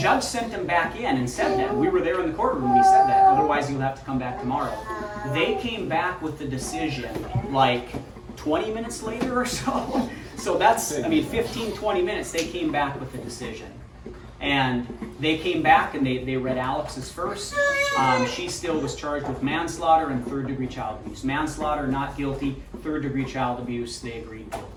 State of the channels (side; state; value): both; identical; correlation 1.00